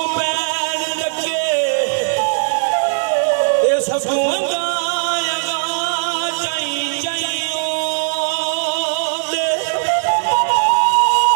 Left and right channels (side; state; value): left; silent; digital silence